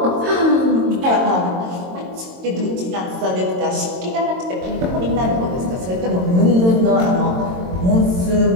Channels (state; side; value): late; left; 22 ms